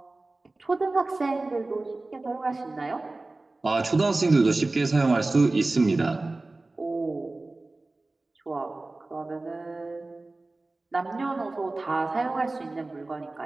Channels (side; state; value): left; quieter; 3.1 dB